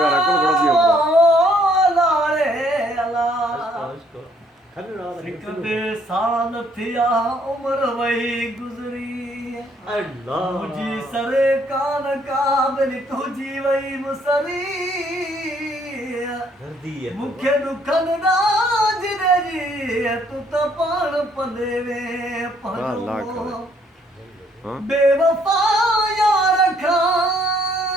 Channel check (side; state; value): both; normal; correlation 0.66